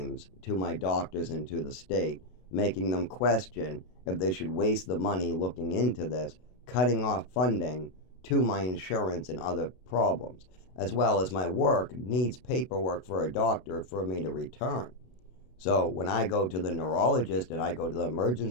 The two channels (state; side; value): late; right; 32 ms